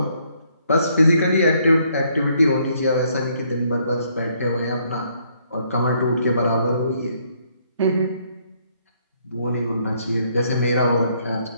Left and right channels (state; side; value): inverted; both; correlation -0.69